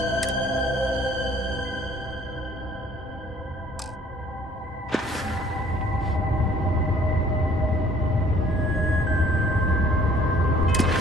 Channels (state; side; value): normal; both; correlation 0.57